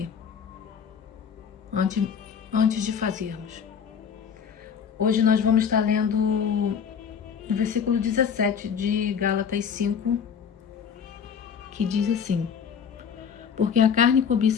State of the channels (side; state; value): right; quieter; 7.1 dB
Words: Antes de fazermos. Hoje nós vamos estar lendo o versículo 17 de Gálatas 5, que diz assim: Porque a carne